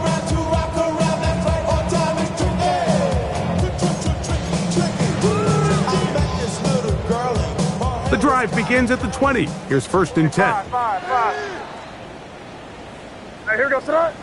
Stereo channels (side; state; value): both; identical; correlation 1.00